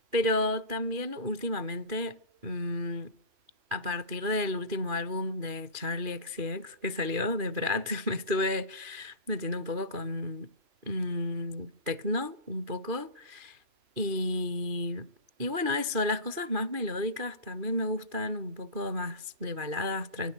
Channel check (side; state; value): left; late; 2.5 ms